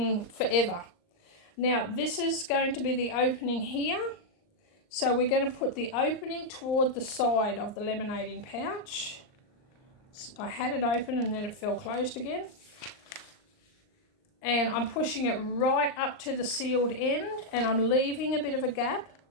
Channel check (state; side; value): late; right; 38 ms